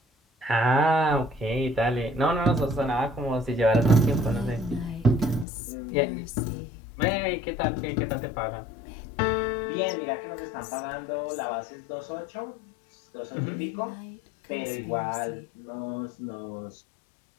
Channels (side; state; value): right; drops out; at 5.5 s